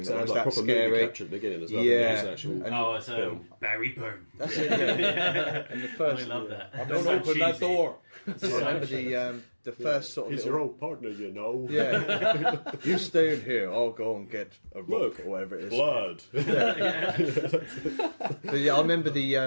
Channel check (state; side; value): inverted; both; correlation -1.00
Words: because it that had was like that proper movie scary. capture at the beginning as well. Yeah. Yeah, it was an actual And- Oh, it's film. Barry Boom. And the I first, love that. Don't It's so open that cheesy. door. It's I so remember cheesy. the first sort of He's little- your old partner, you know. yeah. You stay in here. I'll go and get a rock Look, or whatever it is. Blood. But yeah, I remember